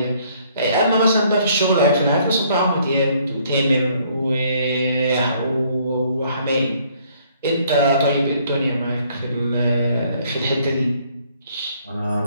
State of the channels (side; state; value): both; inverted; correlation -0.64